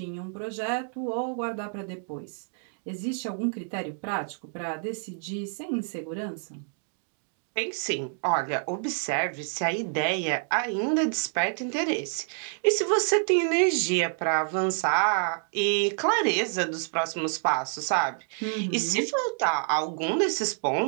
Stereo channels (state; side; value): silent; left; 59 dB below the other